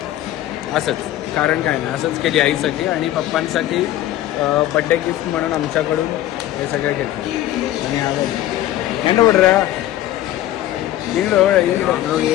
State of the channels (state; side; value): quieter; right; 13.7 dB